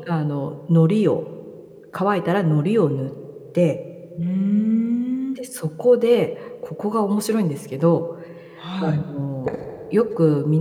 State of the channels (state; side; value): identical; both; correlation 1.00